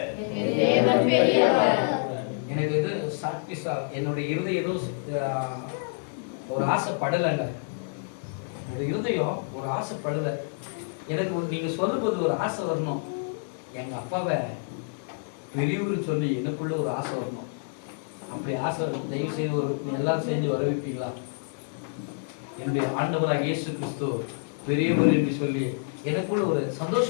எனக்கு இது சாக்டிஸா என்னுடைய இருதயம் ஏதோ ஒரு ஆசைப்படலைங்க. என்னுடைய இருதயம் ஒரு ஆசைப்படலை. எனக்கு நீங்க சொல்லும்போது ஒரு ஆசை வரணும். எங்க அப்பாவை பெரியவர் சொல்லி எனக்குள்ள ஒரு ஆசை வரணும். அப்படி ஆசை தயவு செய்து ஒரு எல்லாரும் சேர்ந்து வர வைப்பீங்களா? என்னுடைய ஆண்டவராக இயேசு கிறிஸ்து பெரியவர் என்று சொல்லி எனக்குள்ள ஒரு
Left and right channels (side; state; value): right; silent; 56 dB below the other